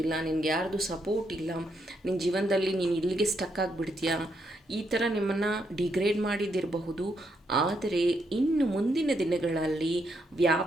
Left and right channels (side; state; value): both; normal; correlation 0.78